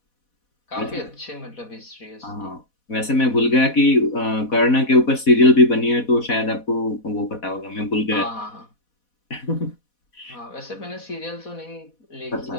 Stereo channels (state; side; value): late; right; 4.1 ms